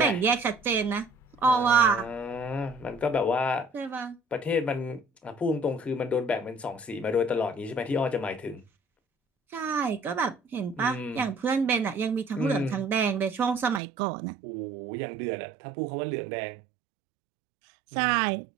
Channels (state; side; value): drops out; left; at 13.8 s